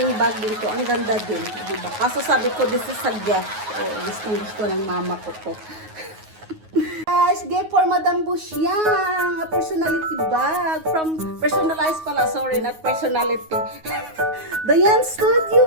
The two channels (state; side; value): late; left; 9.4 ms